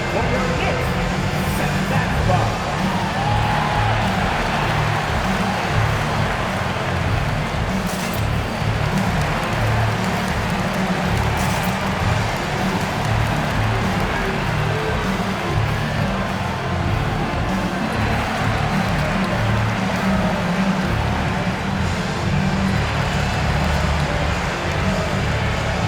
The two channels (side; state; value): both; identical; correlation 1.00